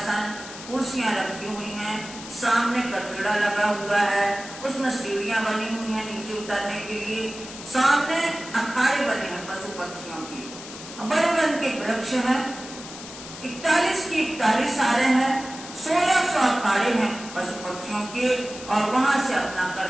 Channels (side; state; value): left; noise; hiss, 13 dB below the sound